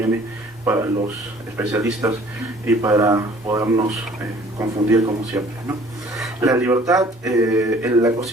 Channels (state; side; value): normal; both; correlation 0.53